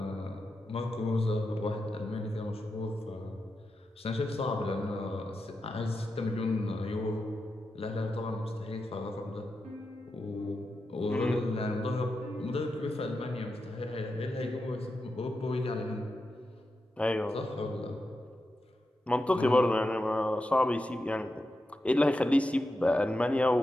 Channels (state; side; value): normal; both; correlation 0.89